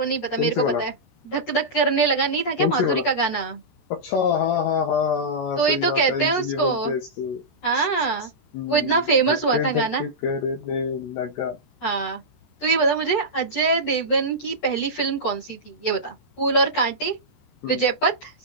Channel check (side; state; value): right; late; 13 ms